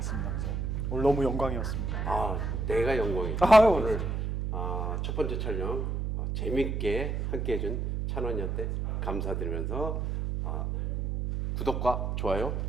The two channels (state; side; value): noise; right; hum, 1 dB below the sound